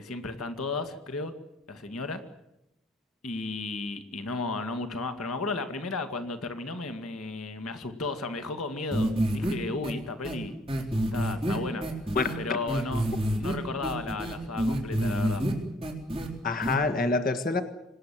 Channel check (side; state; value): both; normal; correlation 0.59